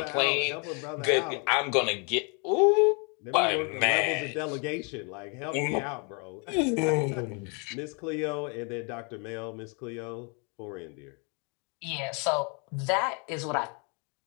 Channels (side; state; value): right; quieter; 35.2 dB